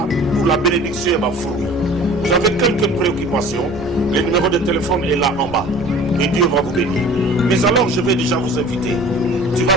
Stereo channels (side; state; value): both; normal; correlation 0.45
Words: pour la bénédiction et ma fruit. Vous avez quelques préoccupations, le numéro de téléphone est là en bas et Dieu va vous bénir. Mais alors, je vais déjà vous inviter. Tu vas